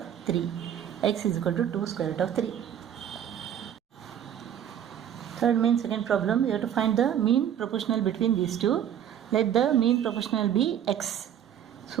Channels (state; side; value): quieter; left; 9.7 dB